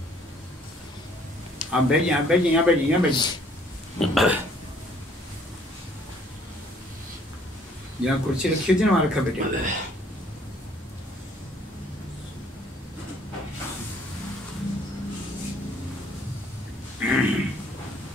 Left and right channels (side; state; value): both; normal; correlation 0.60